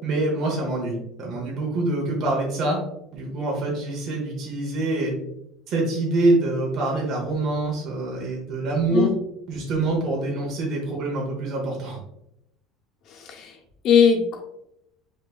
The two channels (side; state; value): both; normal; correlation 0.51